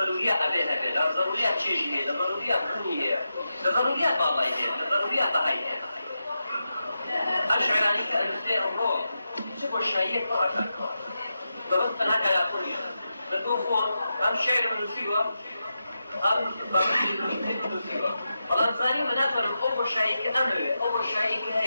أبيها ضروريات شيء ضروريات كونية ضروريات والله ضروريات هاي أشعراني كأنسان الروح شوف الشيء كأكثر فبس أنا كلا كونية بتوفون أم شعر من سوى أم والله زاني مناتورم أول شيء كأمر أول شيء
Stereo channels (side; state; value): both; inverted; correlation -0.88